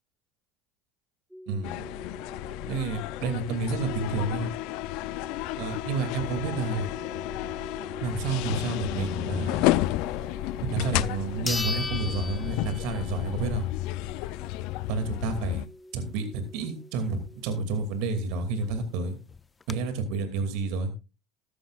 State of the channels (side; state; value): both; normal; correlation 0.18